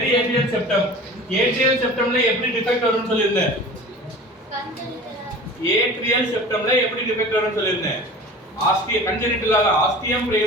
atrial septum. atrial septumல எப்படி டிஃபெக்ட் வரும்னு சொல்லிருந்தேன். atrial septumல எப்படி டிஃபெக்ட் வரும்னு சொல்லிருந்தேன். ஆஸ்டியம் கன்ஜெனிட்டலாக ஆஸ்டியம்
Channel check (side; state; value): both; normal; correlation 0.39